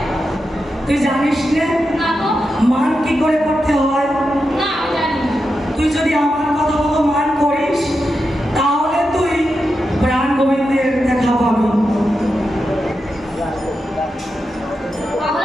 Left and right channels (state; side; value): normal; both; correlation 0.88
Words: তুই জানিস না না তো। মান কি করে করতে হয়? না, আমি জানি না। তুই যদি আমার কথা মতো মান করিস তাহলে তুই প্রাণ গোবিন্দের দেখা পাবি।